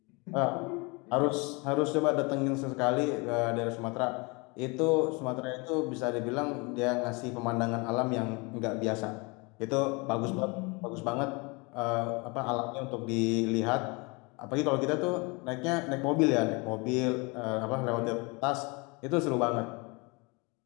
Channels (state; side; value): quieter; right; 28.6 dB